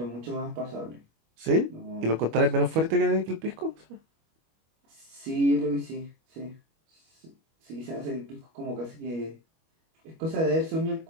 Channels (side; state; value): left; late; 25 ms